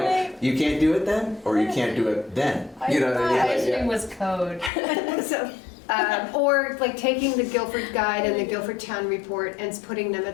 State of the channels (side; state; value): right; drops out; at 4.7 s